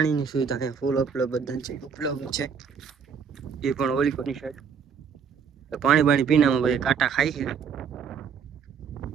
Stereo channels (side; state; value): left; quieter; 6.6 dB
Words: સુવિધા છે ફૂલ ઉપલબ્ધ છે એ પણ ઓલિકોની સાઈડ. તો પાણી બાણી પીનામાં બધા કાંટા ખાય છે.